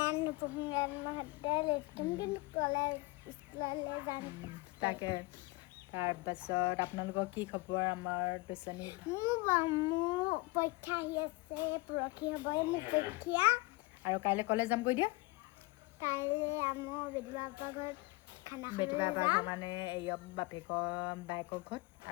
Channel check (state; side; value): quieter; right; 24.1 dB